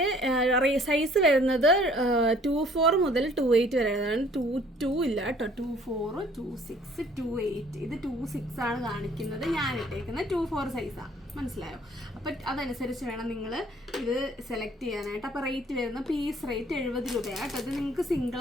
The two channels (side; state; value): both; normal; correlation 0.57